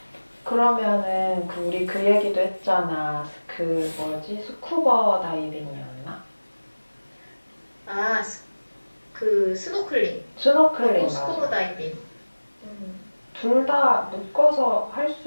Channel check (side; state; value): both; inverted; correlation -1.00